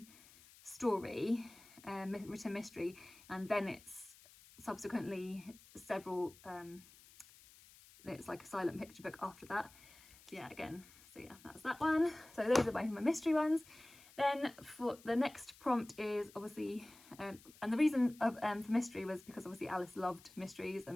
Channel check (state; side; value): noise; left; hiss, 22 dB below the sound